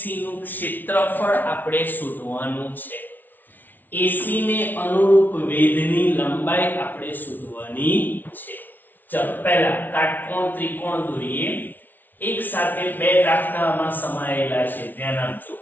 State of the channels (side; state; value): right; late; 0.086 ms